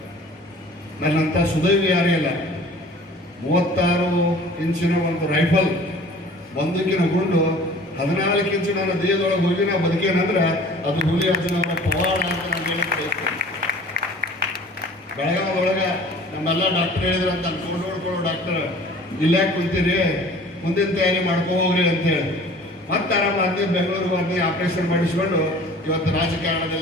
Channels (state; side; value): normal; both; correlation 0.48